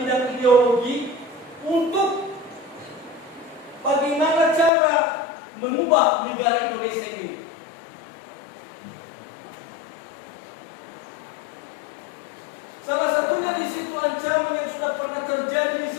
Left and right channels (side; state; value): right; drops out; at 4.7 s